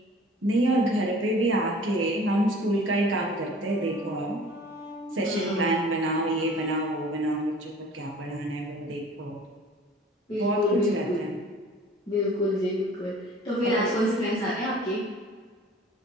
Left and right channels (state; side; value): normal; both; correlation 0.47